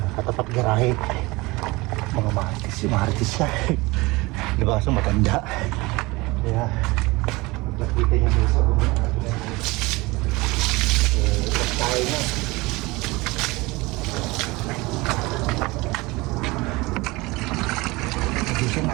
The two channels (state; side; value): quieter; left; 22.8 dB